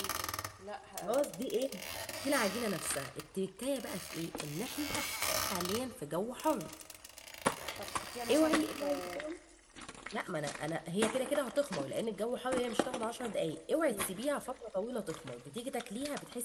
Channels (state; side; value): identical; both; correlation 1.00